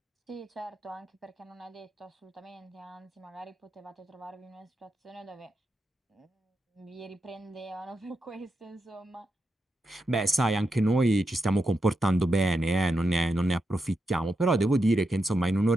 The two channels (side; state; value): both; normal; correlation 0.86